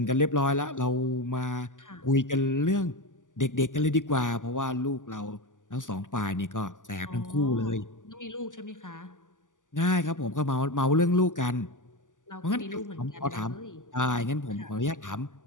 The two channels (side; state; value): right; late; 0.87 ms